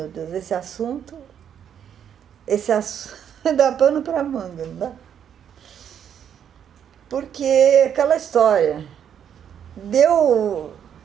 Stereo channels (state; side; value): quieter; left; 8.8 dB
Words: Deus, esse assunto dá pano para manga, não dá? Porque aquela história, deu